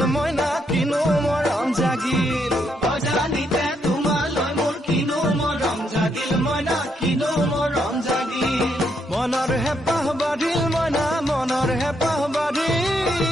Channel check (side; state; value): both; normal; correlation 0.77